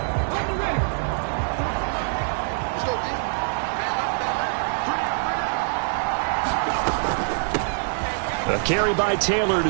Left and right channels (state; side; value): silent; left; digital silence